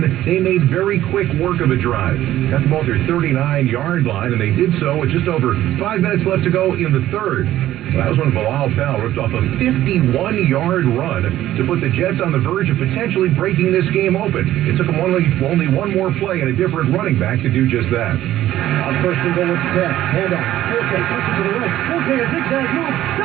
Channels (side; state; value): left; quieter; 13.6 dB